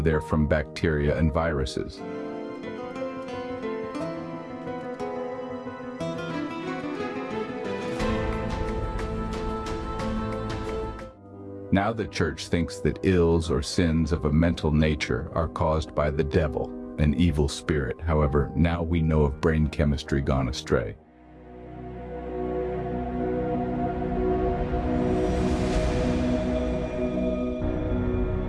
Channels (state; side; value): identical; both; correlation 1.00